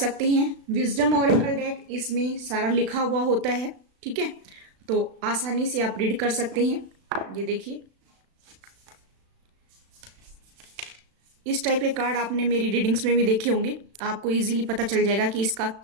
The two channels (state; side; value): late; left; 36 ms